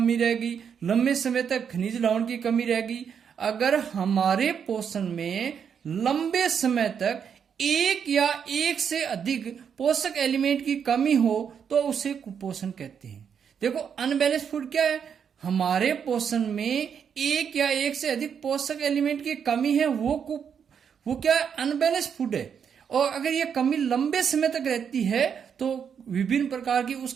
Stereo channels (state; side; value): quieter; left; 7.4 dB